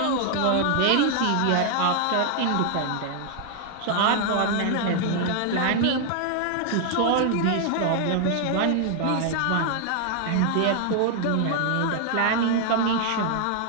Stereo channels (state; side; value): different; both; correlation 0.00